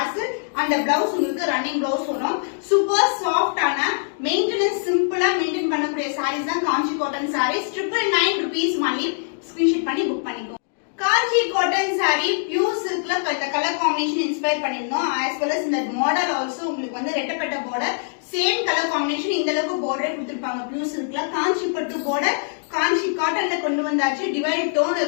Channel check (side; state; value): right; silent; digital silence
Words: and the blouse உங்களுக்கு running blouse வரும். சூப்பர் சாஃப்ட் ஆன மெயின்டெனன்ஸ் சிம்பிளா மெயின்டைன் பண்ணக்கூடிய sarees தான் Kanchi cotton sarees. 999 rupees only, screenshot பண்ணி புக் பண்ணிக்கோ. காஞ்சி காட்டன் saree பியூர் சில்க்ல கலர் காம்பினேஷன் இன்ஸ்பயர் பண்ணிருந்தோம். as well as இந்த மாடல் ஆல்சோ உங்களுக்கு வந்து ரெட்டப்பட்ட border, சேம் கலர் காம்பினேஷன். இந்த அளவுக்கு border கொடுத்திருப்பாங்க பியூர் சில்க்ல. காஞ்சிபட்டு border காஞ்சி காட்டன்ல கொண்டு வந்தாச்சு. dual டோன்